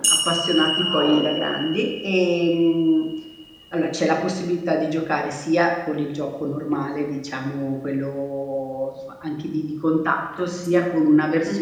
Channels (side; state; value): both; identical; correlation 1.00